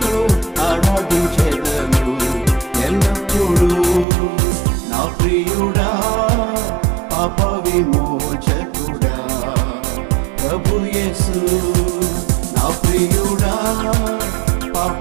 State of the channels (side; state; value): left; drops out; at 4.0 s